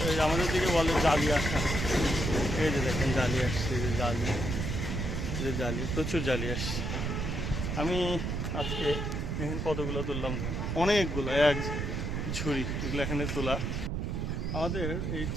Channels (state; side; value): noise; right; rumble, 2 dB below the sound